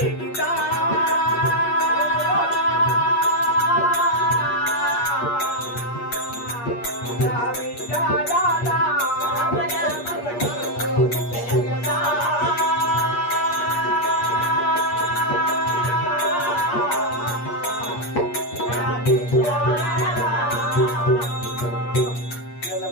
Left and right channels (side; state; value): right; late; 8.4 ms